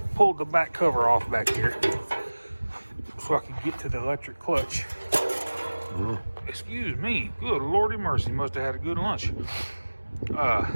pulled the back cover off back here so I can get to the electric clutch. Excuse me, good lordy mercy, must have had a good lunch.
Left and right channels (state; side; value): inverted; both; correlation -1.00